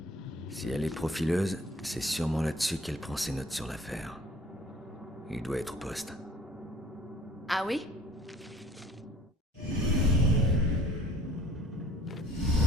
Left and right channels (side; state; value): both; normal; correlation 0.52